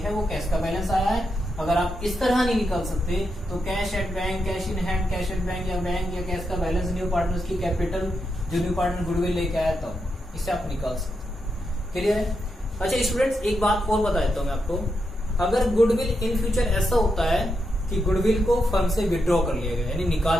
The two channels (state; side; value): normal; both; correlation 0.84